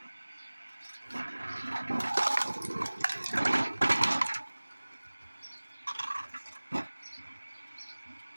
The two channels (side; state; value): both; inverted; correlation -1.00